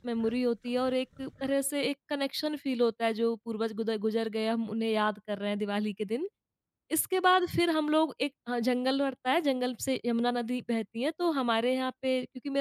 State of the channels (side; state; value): both; identical; correlation 1.00